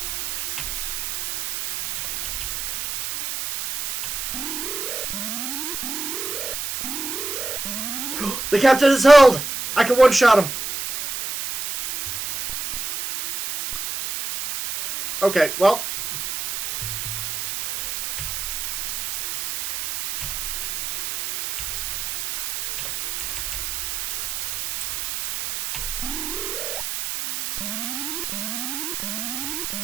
The captain is held! I can one-shot him. Okay, well.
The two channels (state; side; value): noise; right; hiss, 4 dB below the sound